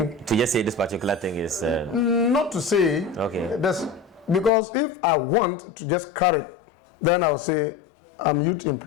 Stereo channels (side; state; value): right; drops out; at 4.5 s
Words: just say this particular thing is... Not to say. Okay. Because if I want to just carry, then I'll say I'm youth